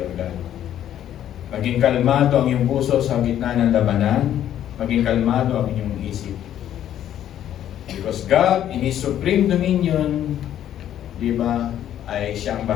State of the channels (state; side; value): quieter; right; 11.0 dB